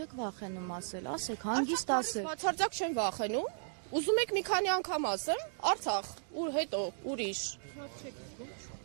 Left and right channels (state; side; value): silent; left; digital silence